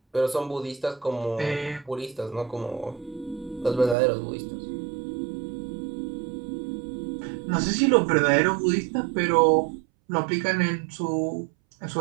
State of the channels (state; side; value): drops out; left; at 4.0 s